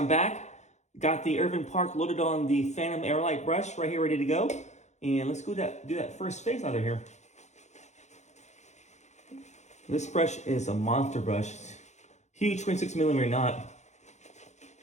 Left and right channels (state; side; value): late; right; 0.33 ms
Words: back. Got the Irving Park loaded on the Phantom Aerolite brush right here, ready to go. And let's go do that first face out of here. This brush is a monster brush. Huge 26 millimeter knot.